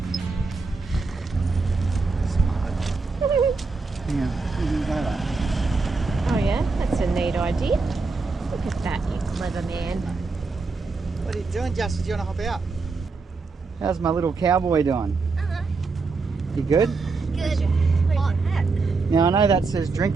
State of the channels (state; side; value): quieter; left; 4.2 dB